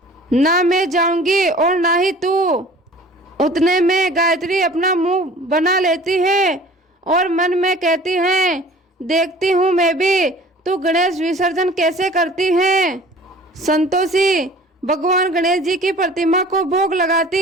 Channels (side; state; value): both; normal; correlation 0.47